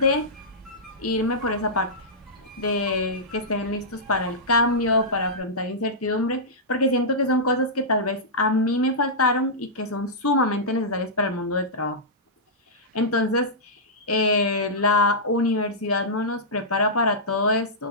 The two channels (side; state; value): both; normal; correlation -0.14